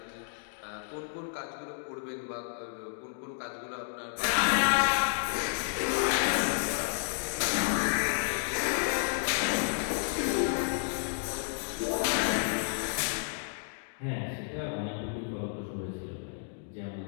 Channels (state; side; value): silent; right; digital silence